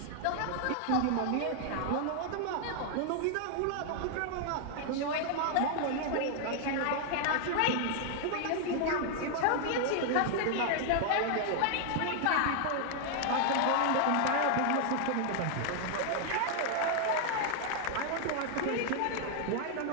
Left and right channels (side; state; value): both; different; correlation 0.00